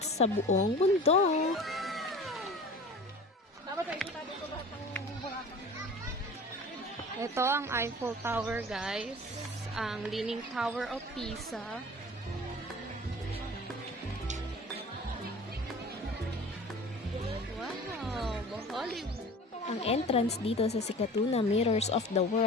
sa buong mundo. Ito ang Eiffel Tower, guys. Ang Leaning Tower of Pisa. Wow, Hollywood. Ang entrance dito sa Sikatuna Mirrors of the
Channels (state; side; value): normal; both; correlation 0.40